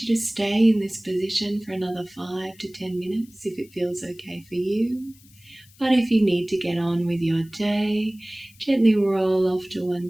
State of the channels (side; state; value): left; noise; hiss, 27 dB below the sound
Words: you to stay in this position for another 5 to 10 minutes if it feels okay for you. But if you need to get on with your day, gently roll off to one